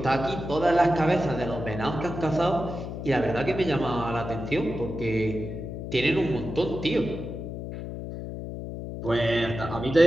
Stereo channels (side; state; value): left; noise; hum, 7 dB below the sound